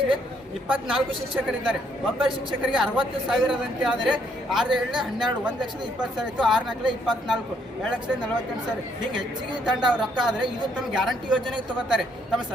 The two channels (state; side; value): normal; both; correlation 0.70